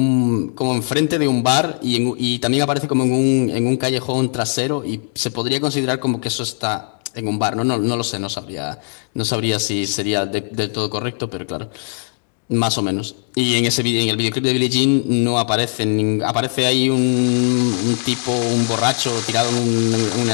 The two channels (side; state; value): right; silent; 58 dB below the other